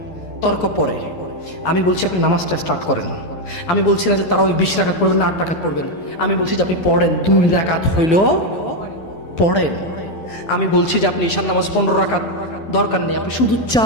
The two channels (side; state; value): right; late; 12 ms